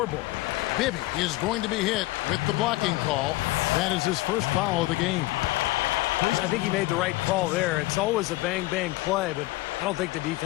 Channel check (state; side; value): quieter; right; 19.5 dB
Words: Bibby is going to be hit with the blocking call. That is his first foul of the game. I think he made the right call there. It's always a bang-bang play, but I don't think the